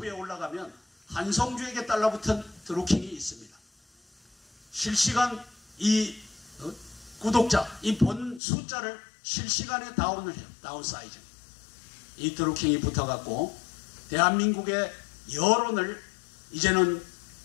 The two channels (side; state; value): right; drops out; at 8.4 s